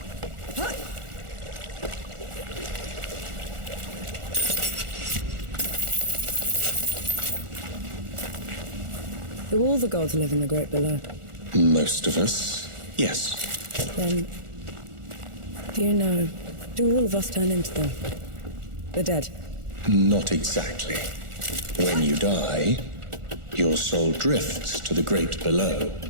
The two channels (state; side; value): late; left; 1.4 ms